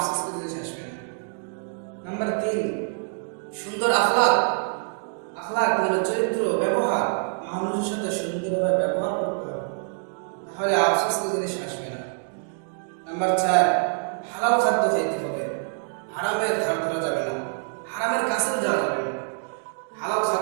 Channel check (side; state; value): left; silent; 61 dB below the other